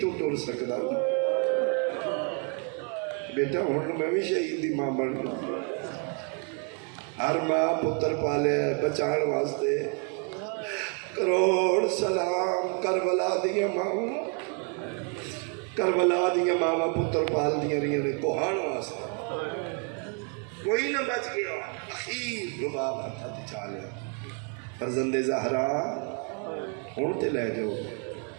تو ٹر سکتا بیٹا ہوں میں بھی شہید دی ماں بن گئی ہر ماں پتر پالے بچان واسطے کروڑ سلام کربلا دیا ماں کربلا دیا ماں پتر پال دیا رہی نے کوہان واسطے کوئی نہ بچ گیا اخیر رباب ہتھا تے چالیا فرزند زہرا ہوں تو لے جاؤ.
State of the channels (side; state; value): left; quieter; 39.3 dB